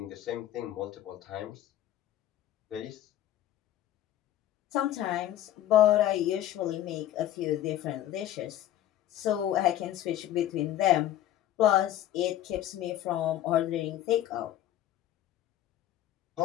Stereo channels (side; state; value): right; quieter; 12.5 dB